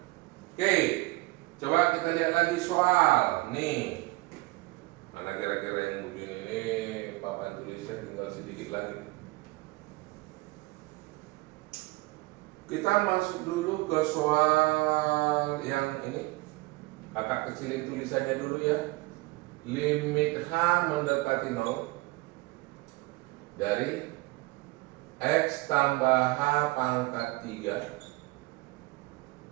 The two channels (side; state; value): left; quieter; 22.5 dB